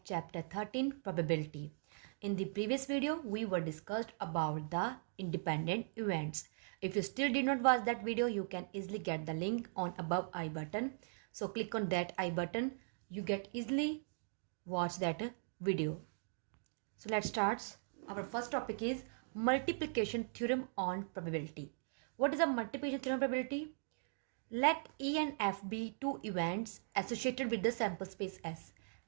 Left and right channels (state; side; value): silent; left; digital silence